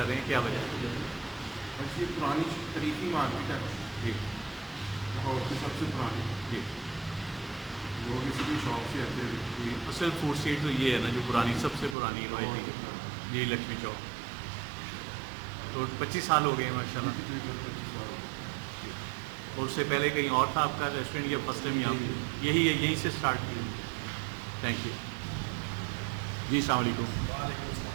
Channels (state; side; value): drops out; left; at 12.0 s